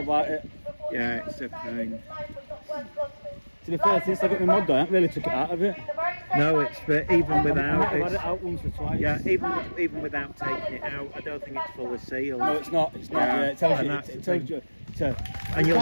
it. Yeah, it's a pain. To be fair, since I got my mod done, I haven't really took it out of it. No, it's even without I've had it. it out once or twice. Yeah, even without taking it out, I don't think it's fully sealed. No, it's not. It's not. Yeah, Yeah, it tells and you. that's It the tells thing. you. And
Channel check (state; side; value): inverted; both; correlation -1.00